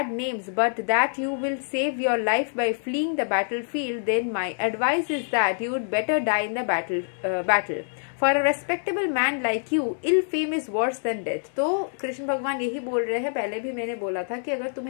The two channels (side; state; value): right; silent; digital silence